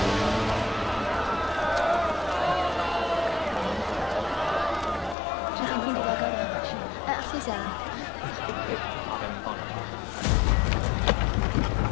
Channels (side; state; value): right; drops out; at 5.2 s